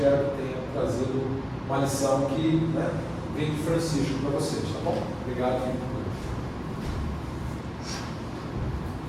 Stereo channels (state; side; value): identical; both; correlation 1.00